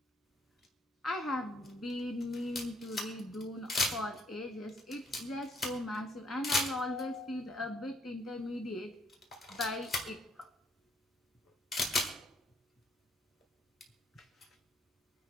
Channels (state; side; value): normal; both; correlation 0.69